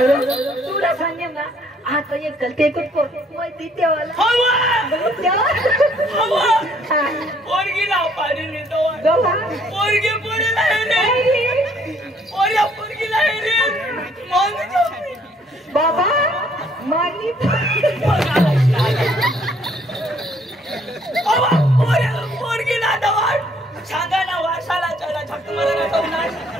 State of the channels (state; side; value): normal; both; correlation 0.64